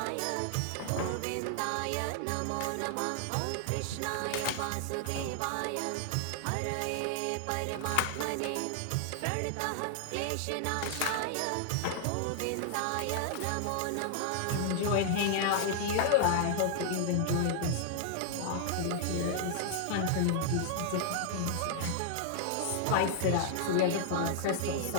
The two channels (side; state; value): both; different; correlation -0.01